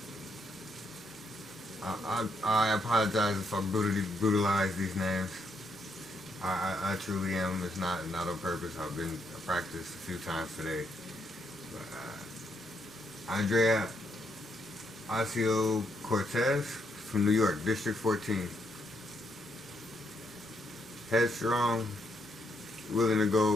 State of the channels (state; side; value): normal; both; correlation 0.76